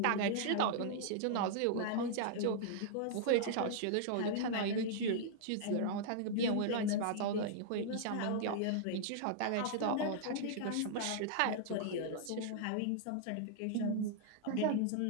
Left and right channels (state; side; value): different; both; correlation -0.01